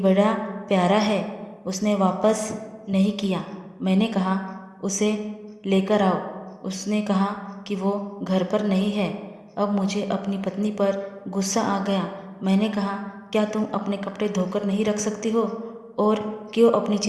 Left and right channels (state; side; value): identical; both; correlation 1.00